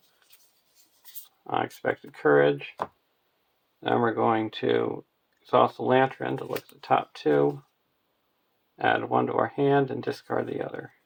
Unexpected Courage. Then we're going to exhaust the Lantern to look at the top 2, add 1 to our hand, and discard the other.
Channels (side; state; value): both; identical; correlation 1.00